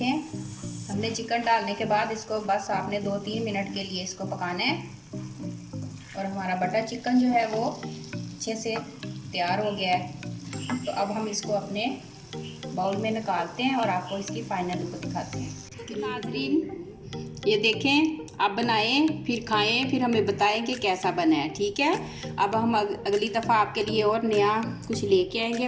हमने चिकन डालने के बाद इसको बस आपने 2-3 मिनट के लिए इसको पकाना है, और हमारा बटर चिकन जो है वो अच्छे से तैयार हो गया है। तो अब हम इसको अपने बाउल में निकालते हैं और आपको इसकी फाइनल लुक दिखाते हैं। नाजरीन ये देखें, आप बनाएं फिर खाएं, फिर हमें बताएं कि कैसा बना है, ठीक है। अब हम अगली दफ़ा आपके लिए और नया कुछ लेके आएंगे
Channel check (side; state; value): both; identical; correlation 1.00